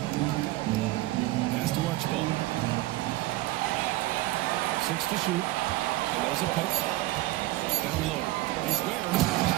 Pass to Archibald. 6 to shoot. And there's a pick. Down low. Here's Ware.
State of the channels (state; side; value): quieter; left; 18.0 dB